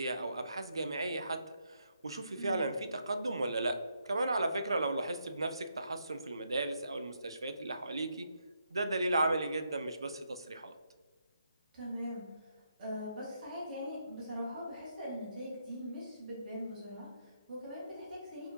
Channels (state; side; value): inverted; both; correlation -0.78